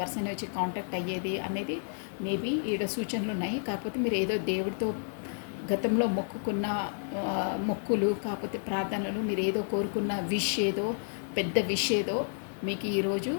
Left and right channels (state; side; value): silent; right; digital silence